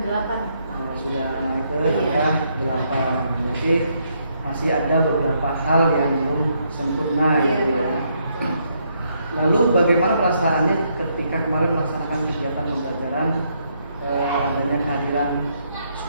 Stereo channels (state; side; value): inverted; both; correlation -0.75